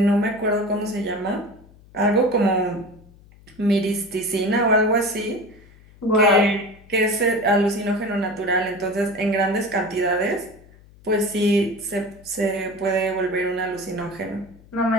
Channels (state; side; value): noise; left; hum, 25 dB below the sound